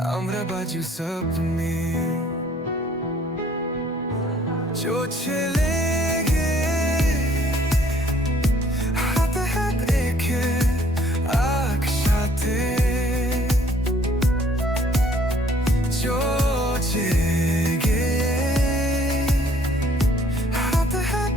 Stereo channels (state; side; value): normal; both; correlation 0.60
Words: আমরা বাজু সপনে চোখে লেগে হাতে হাত রেখে একসাথে চোখে লেগে হাতে হাত